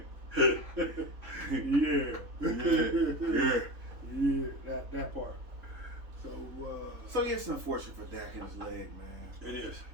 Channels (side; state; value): left; late; 3.7 ms